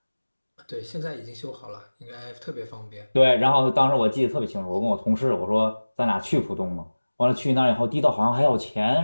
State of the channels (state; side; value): inverted; both; correlation -1.00